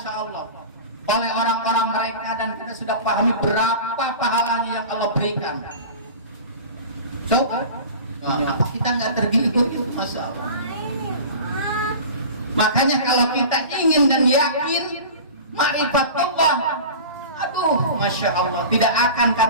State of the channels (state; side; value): inverted; both; correlation -0.36